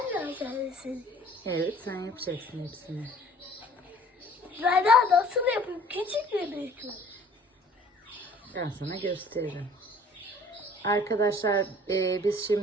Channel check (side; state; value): both; normal; correlation 0.51